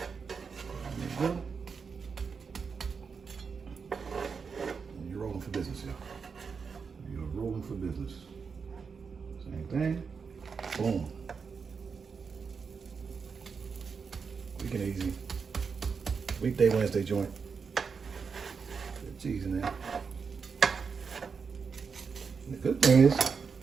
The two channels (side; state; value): left; quieter; 5.6 dB